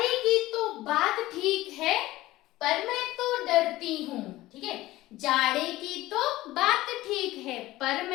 की तो बात ठीक है पर मैं तो डरती हूँ। ठीक है, जाड़े की तो बात ठीक है पर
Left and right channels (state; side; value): quieter; right; 17.2 dB